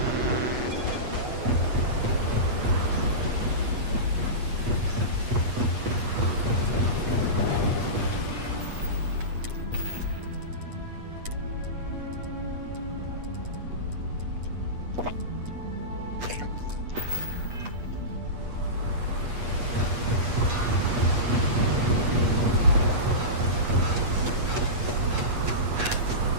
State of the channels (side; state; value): left; late; 8.3 ms